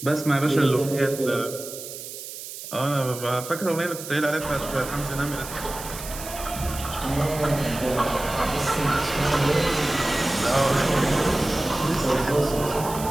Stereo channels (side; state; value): right; noise; hiss, 11 dB below the sound